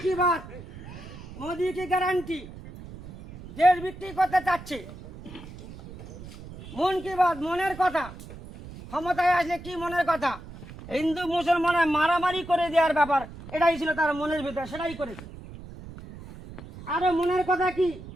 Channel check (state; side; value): noise; right; rumble, 15 dB below the sound